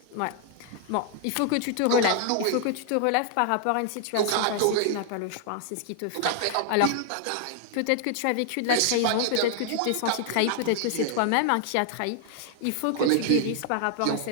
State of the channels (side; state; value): both; different; correlation 0.00